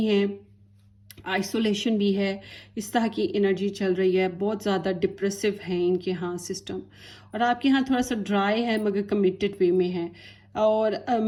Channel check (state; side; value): identical; both; correlation 1.00